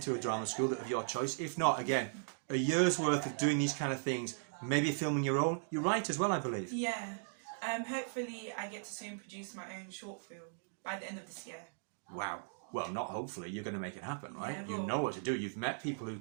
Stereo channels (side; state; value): left; silent; digital silence